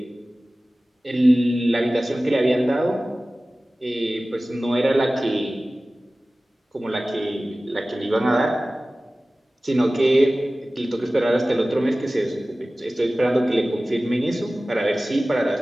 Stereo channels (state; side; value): normal; both; correlation 0.97